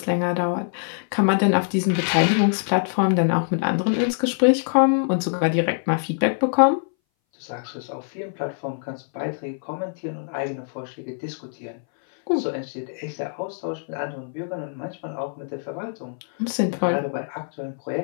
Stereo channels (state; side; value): silent; right; 60 dB below the other